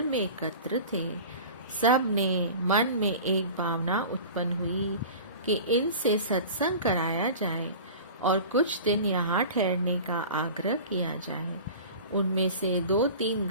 में एकत्र थे। सब ने मन में एक भावना उत्पन्न हुई कि इनसे सत्संग कराया जाए और कुछ दिन यहाँ ठहरने का आग्रह किया जाए। उनमें से 2-3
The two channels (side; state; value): both; inverted; correlation -0.37